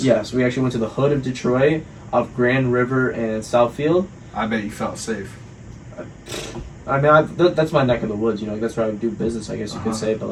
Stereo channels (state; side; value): identical; both; correlation 1.00